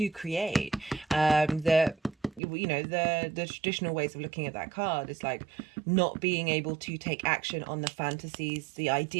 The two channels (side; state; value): left; drops out; at 2.4 s